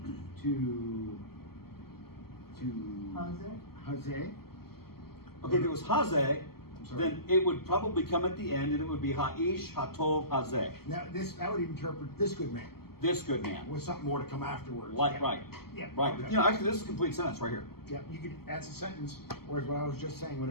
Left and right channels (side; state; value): right; late; 0.95 ms